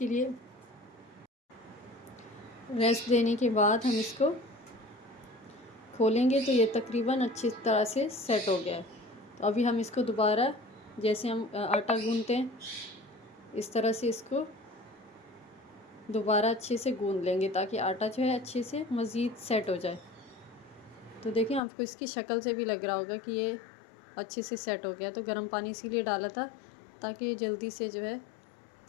लिए रेस्ट देने के बाद हम इसको खोलेंगे तो ये तकरीबन अच्छी तरह से सेट हो गया है। तो अभी हम इसको दोबारा जैसे हम आटा गूंथते हैं इस तरह से इसको दोबारा अच्छे से गूंथ लेंगे, ताकि आटा जो है अच्छे से मज़ीद सेट हो जाए। तो देखिए आपको इसकी शक्ल से भी लग रहा होगा कि ये अच्छे से सेट हो गया। तो गर्म पानी इसीलिए डाला था ताकि ये जल्दी से जो है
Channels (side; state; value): right; drops out; at 21.6 s